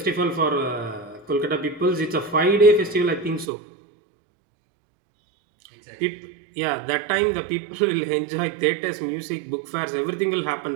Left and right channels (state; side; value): drops out; left; at 3.5 s